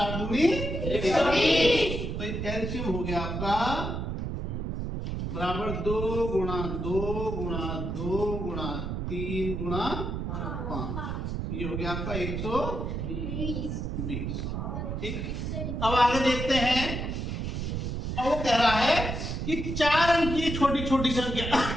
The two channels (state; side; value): noise; right; rumble, 3 dB below the sound